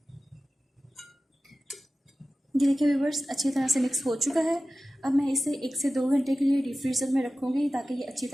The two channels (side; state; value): both; normal; correlation 0.95